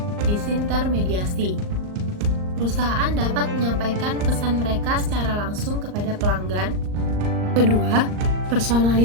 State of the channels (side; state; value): left; late; 39 ms